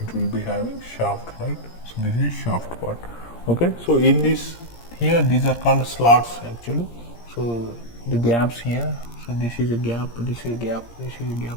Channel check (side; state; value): right; late; 17 ms